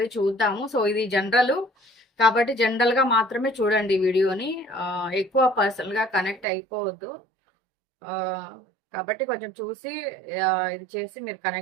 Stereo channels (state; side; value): drops out; left; at 6.5 s